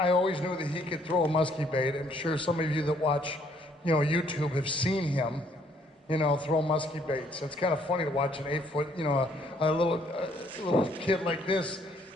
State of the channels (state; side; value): normal; both; correlation 0.66